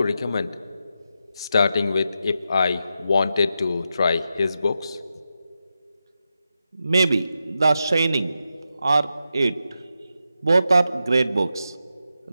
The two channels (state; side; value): inverted; both; correlation -0.88